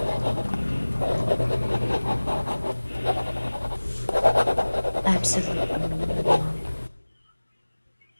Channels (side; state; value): both; inverted; correlation -1.00